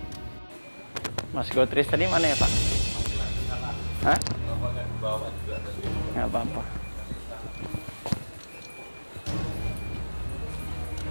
Mas Gotris tadi mana ya Pak? Hah? Nggak apa-apa.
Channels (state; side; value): inverted; both; correlation -1.00